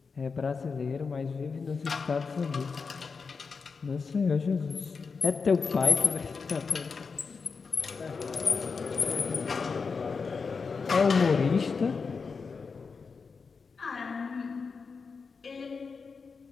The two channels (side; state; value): right; quieter; 5.0 dB